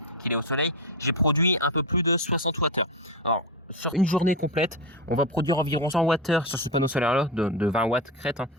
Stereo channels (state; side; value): normal; both; correlation 0.15